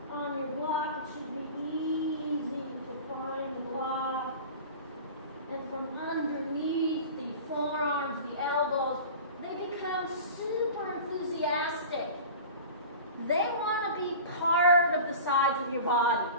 on your block. It should be easy to find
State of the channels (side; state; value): both; inverted; correlation -0.37